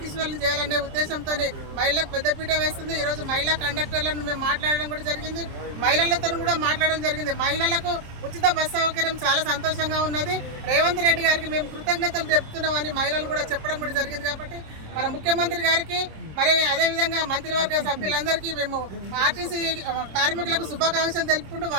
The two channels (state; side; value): late; left; 27 ms